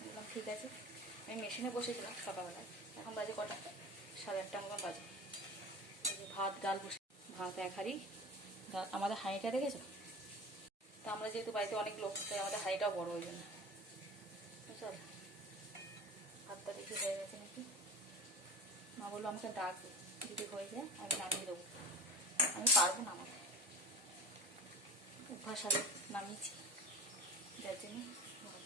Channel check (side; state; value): both; normal; correlation 0.35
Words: বললাম ঠিক আছে। আমি মেশিনে বসেছিলাম সকালবেলা, এখন বাজে কটা, 8:30 মতন বাজে। ভাত ডাল বসে, ভাত এক হাঁড়ি ডাল। আমাদের হাঁড়িটা দেখেছো তো, আমরা যেহেতু বাড়িতে অনেক লোক, তাই আমাদের হাঁড়িটাও বড়, ওই জন্য। চল, ভাতটা দেখি হয়ে গেছে নাকি। মা বললো আমাকে ডাকবে, যদি হয়ে যায় আমি নামিয়ে দেবো। আমি পারবো না, আমার অভ্যাস আগে নামিয়েছি, যার জন্য